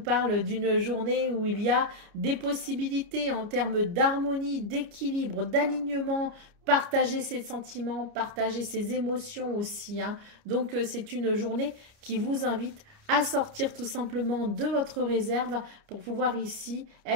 d'une journée où il y a des possibilités en termes d'harmonie, d'équilibre, d'alignement, partager ses sentiments, partager ses émotions aussi, hein. Donc, c'est une journée qui vous invite à sortir tout simplement de votre réserve pour pouvoir ici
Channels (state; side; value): late; left; 29 ms